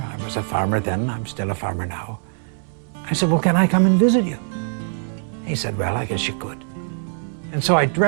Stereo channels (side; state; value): left; silent; 64 dB below the other